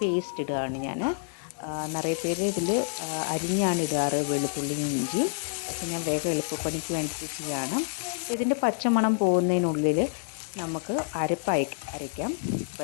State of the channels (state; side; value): silent; right; digital silence